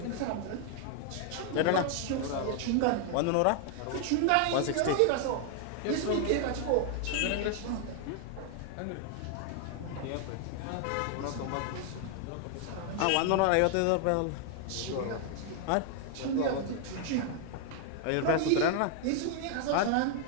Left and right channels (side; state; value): both; different; correlation 0.00